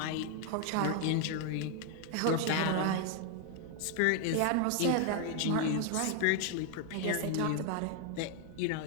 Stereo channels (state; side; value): different; both; correlation 0.00